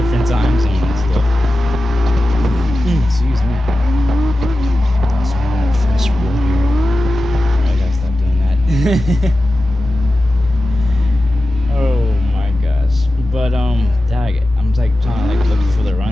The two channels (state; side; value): normal; both; correlation 0.93